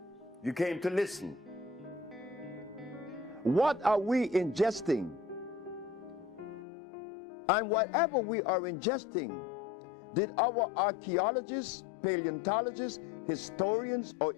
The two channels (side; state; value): right; drops out; at 6.7 s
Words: to listen. What are we ingesting? And whatever we are ingesting, did our archaeologists, paleontologists, historians, or